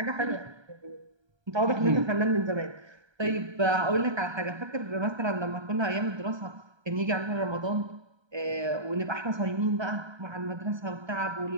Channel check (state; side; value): late; left; 1.3 ms